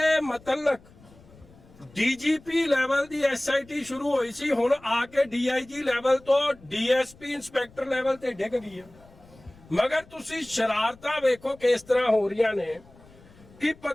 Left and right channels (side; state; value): left; noise; rumble, 25 dB below the sound